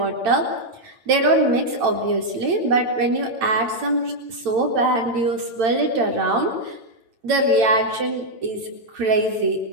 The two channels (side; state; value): left; late; 8.9 ms